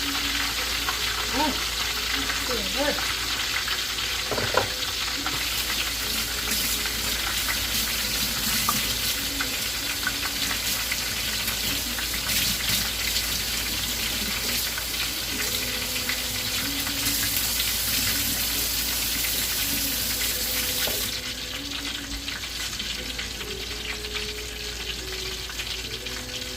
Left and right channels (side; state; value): both; normal; correlation 0.96